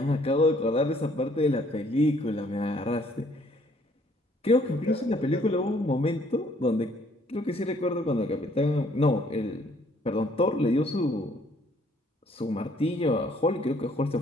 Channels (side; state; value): both; normal; correlation 0.63